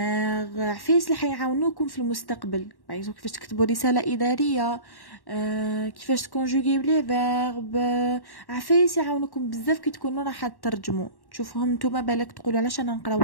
عفايس اللي حيعاونوكم في المستقبل، باغ كيفاش تكتبوا رساله اداريه، كيفاش تكونجوغي لي فيرب، عفايس يعاونوكم بزاف كي تكونوا راح تترجموا. تشوفوهم نتوما بالك تقولوا علاش انا نقراو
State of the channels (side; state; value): right; late; 1.1 ms